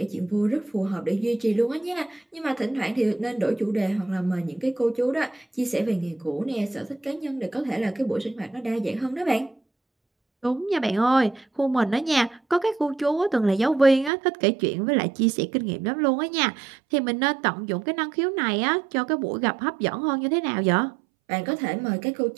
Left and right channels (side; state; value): left; drops out; at 14.1 s